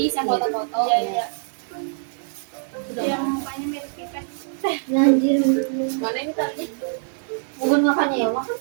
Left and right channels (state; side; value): silent; left; 63 dB below the other